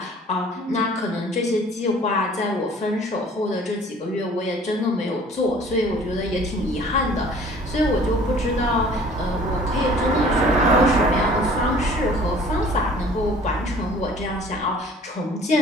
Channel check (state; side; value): normal; both; correlation 0.51